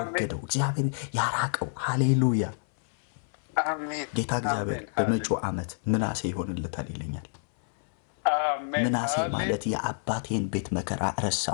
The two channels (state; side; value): silent; right; 59 dB below the other